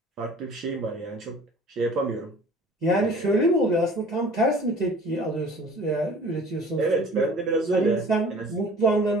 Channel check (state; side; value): normal; both; correlation 0.48